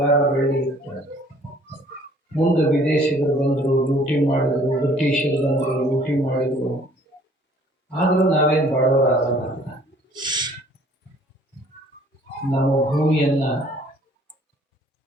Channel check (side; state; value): both; normal; correlation 0.57